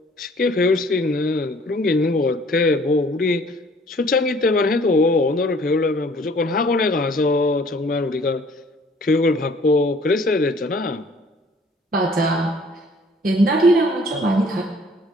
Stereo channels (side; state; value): both; normal; correlation 0.56